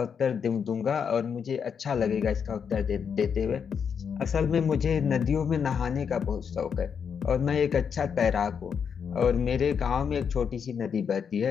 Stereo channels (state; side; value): quieter; right; 6.9 dB